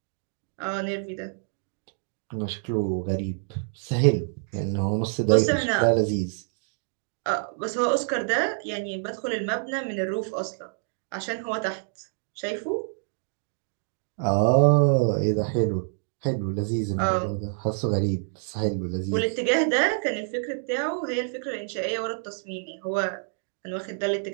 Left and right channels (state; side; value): silent; left; digital silence